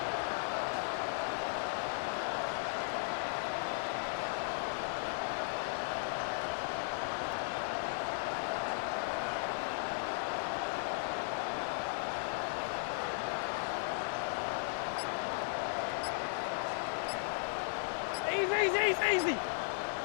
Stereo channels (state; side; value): silent; right; digital silence